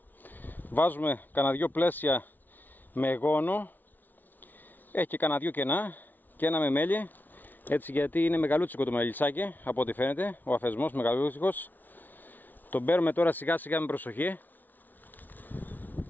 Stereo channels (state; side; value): late; right; 0.084 ms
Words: Βάζουμε κανένα δυο πλαίσια με γόνο, έχει και κανένα δυο κενά και ένα με μέλι, έτσι, γιατί είναι μεγαλούτσικο το μελισσάκι από ό,τι φαίνεται, ο αφισμός μεγαλούτσικος. Τον παίρνουμε τώρα σιγά σιγά με προσοχή.